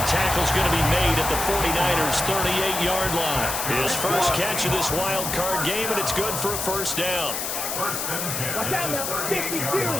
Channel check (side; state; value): left; noise; hiss, 3 dB below the sound